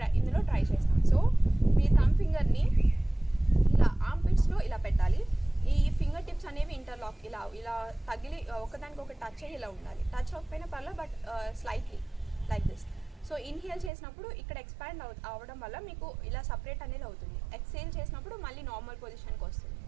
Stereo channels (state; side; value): drops out; left; at 13.9 s